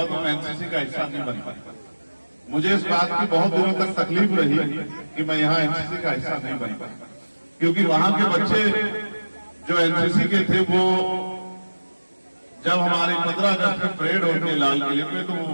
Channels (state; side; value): inverted; both; correlation -1.00